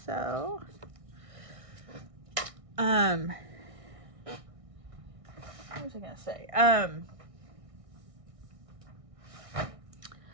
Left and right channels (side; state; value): left; late; 1.6 ms